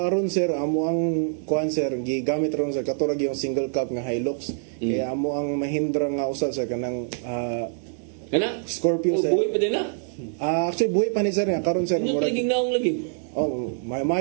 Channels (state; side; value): silent; left; digital silence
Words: sir amo ang kuan sir gigamit ron sir katulad yung single cab nga Hilux kaya amo ang Mahindra nga usa sir kanang Scorpio sir. Buhay pa din na? Actually buhay pa ni sir nga karon sir. Ano lagi naong lagi? Oh,